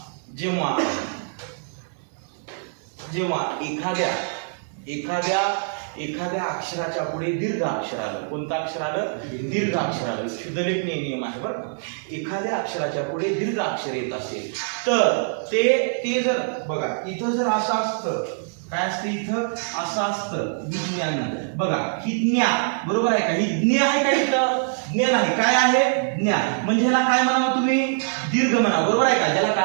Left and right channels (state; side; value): silent; left; digital silence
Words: एखाद्या अक्षराच्या पुढे दीर्घ अक्षर आलं, कोणतं अक्षर आलं, दीर्घ अक्षर आलं, शुद्धलेखनीय नियम आहे बरं. एखाद्या अक्षराच्या पुढे दीर्घ अक्षर येत असेल तर ते जर बघा इथं जर असं असतं, काय असतं इथं असं असतं, विज्ञान, बघा ही ज्ञा, बरोबर आहे का, ही ज्ञ आहे का इथं, ज्ञ नाही. काय आहे? ज्ञान. म्हणजे ह्याला काय म्हणावं तुम्ही? दीर्घ म्हणा. बरोबर आहे का? ज्याला